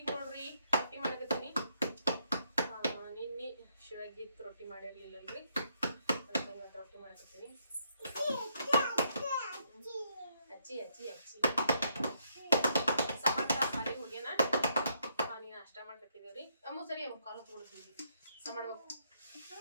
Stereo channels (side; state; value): both; inverted; correlation -0.75